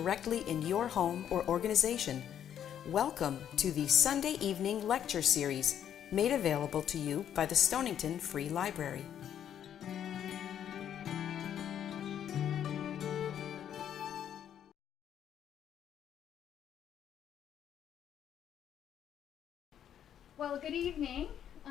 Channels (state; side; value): quieter; right; 9.7 dB